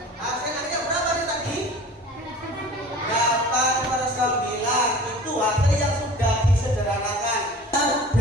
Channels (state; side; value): normal; both; correlation 0.42